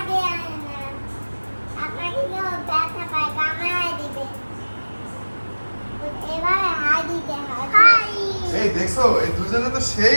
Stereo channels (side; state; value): both; inverted; correlation -1.00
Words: এই দেখছো, এই দুজনে তো